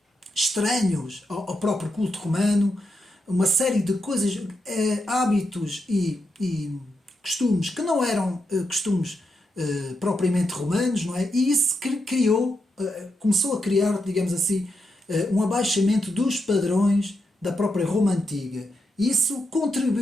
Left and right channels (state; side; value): normal; both; correlation 0.84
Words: estranhos ao próprio culto romano, uma série de coisas, hábitos e costumes que não eram costumes propriamente romanos, não é? E isso criou, começou a criar, digamos assim, um abaixamento dos padrões da própria Roma antiga. Isso